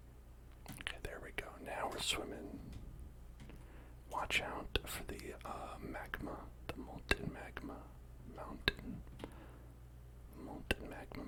Okay, there we go. Now we're swimming. Watch out for the magma, the molten magma mountain. Molten magma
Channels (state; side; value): identical; both; correlation 1.00